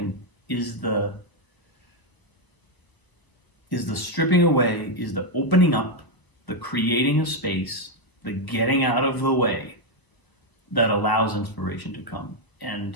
is the stripping away, is the opening up, the creating of space, the getting out of the way that allows inspiration to come. And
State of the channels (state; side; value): late; right; 1.1 ms